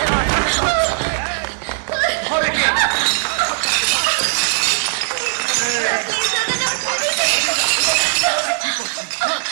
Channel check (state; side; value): silent; left; 67 dB below the other